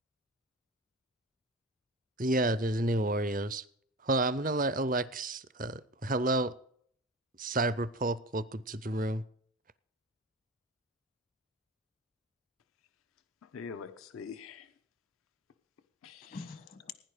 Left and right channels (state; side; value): normal; both; correlation 0.33